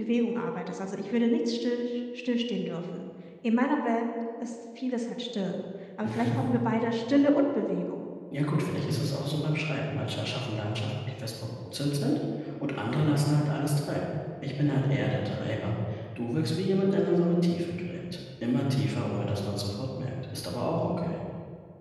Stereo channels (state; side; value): identical; both; correlation 1.00